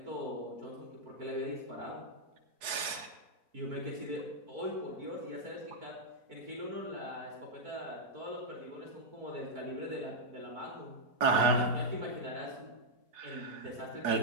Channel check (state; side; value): late; left; 4.9 ms